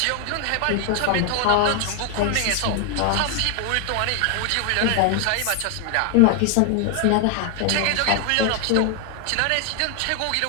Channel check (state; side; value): different; both; correlation 0.00